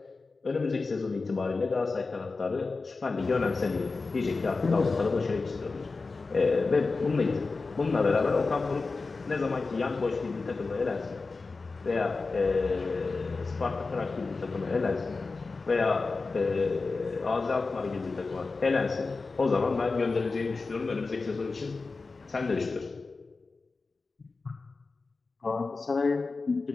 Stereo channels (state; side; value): quieter; right; 4.0 dB